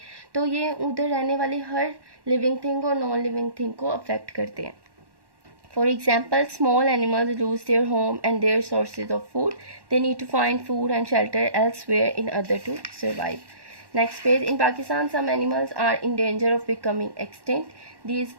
तो ये उधर रहने वाली हर लिविंग थिंग और नॉन लिविंग थिंग को अफेक्ट करते हैं। For example, small animals lose their home and their sources of food. They need to find food and shelter elsewhere in order to survive. Next page. In Pakistan, some animals are in danger of becoming extinct. These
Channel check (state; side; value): late; left; 1.1 ms